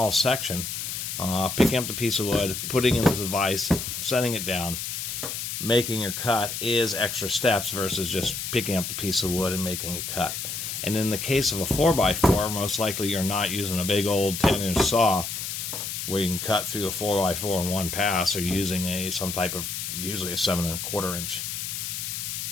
section, picking up the piece of wood, putting it into the vise, setting it down, making your cut is extra steps versus just picking up the piece of wood and making a cut. And in the case of a 4x4, most likely you're not using a big old 10-inch saw where you can cut through a 4x4 in one pass, or using some type of, usually a 7¼ inch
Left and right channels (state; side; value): noise; left; hiss, 5 dB below the sound